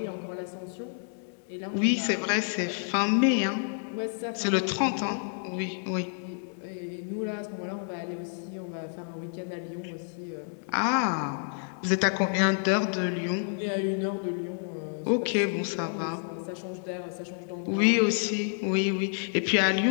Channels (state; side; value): silent; right; digital silence